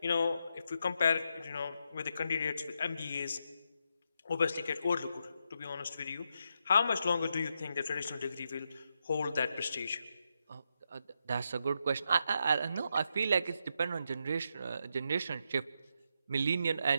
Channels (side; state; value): both; inverted; correlation -0.82